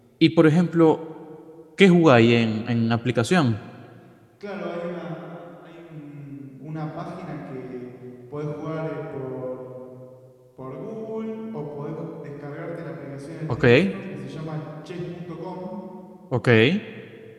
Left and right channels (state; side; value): identical; both; correlation 1.00